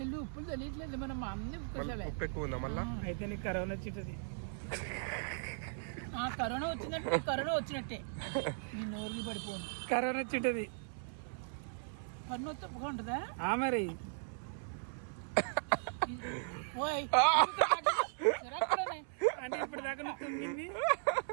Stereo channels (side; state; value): left; silent; 53 dB below the other